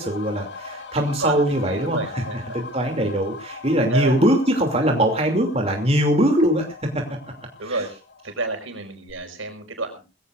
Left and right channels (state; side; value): normal; both; correlation 0.46